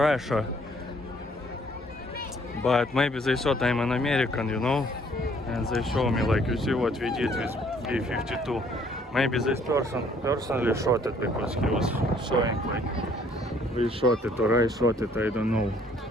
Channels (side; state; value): both; normal; correlation 0.62